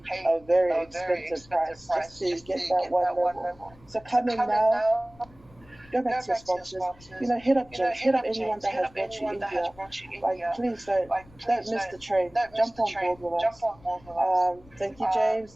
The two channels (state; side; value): noise; left; rumble, 25 dB below the sound